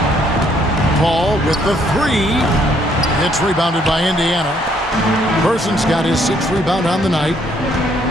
Paul with the 3. It's rebounded by Indiana. Person's got his 6th rebound on the night.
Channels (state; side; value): normal; both; correlation 0.68